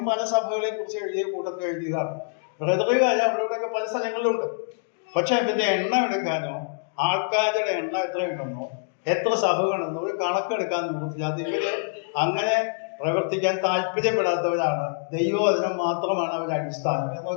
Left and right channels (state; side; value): silent; right; digital silence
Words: പല സഭകളെ കുറിച്ച് എഴുതിയ കൂട്ടത്തിൽ എഴുതിയതാണ്. ബ്രദറുകാര് അവരുടെയൊക്കെ പല സ്ഥലങ്ങളിലുണ്ട്. പക്ഷെ അതിന്റെ എണ്ണം എടുക്കാനോ ആൾക്കാരുടെ എണ്ണം എത്രയുണ്ടെന്നോ എത്ര സഭകളെന്നോ ഒരു കണക്കെടുക്കാൻ നോക്കില്ല. അത് ഇവര് അങ്ങനെ പ്രവർത്തിക്കാൻ താല്പര്യപ്പെടാത്തവരാണ്. ദൈവവചനം മാത്രമാണ് അവരുടെ അടിസ്ഥാനം